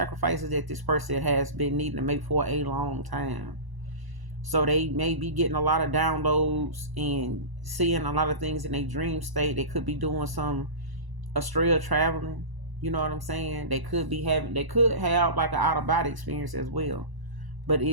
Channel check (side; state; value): left; late; 1.0 ms